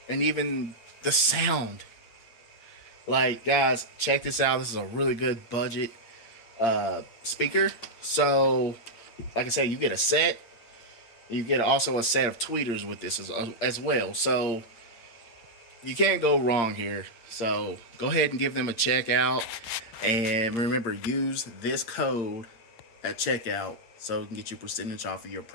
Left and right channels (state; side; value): late; right; 8.7 ms